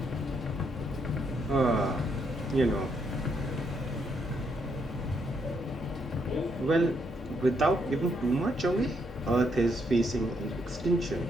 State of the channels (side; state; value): both; normal; correlation 0.75